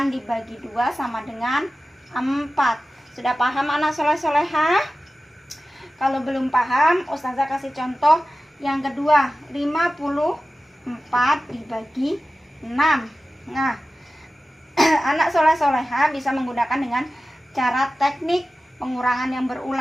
dibagi 2 sama dengan 4. Sudah paham anak soleh-solehah? Kalau belum paham, ustazah kasih contoh yang kedua, 54 dibagi 6. Nah, anak soleh-solehah bisa menggunakan dengan cara teknik pengurangan yang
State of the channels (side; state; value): both; normal; correlation 0.95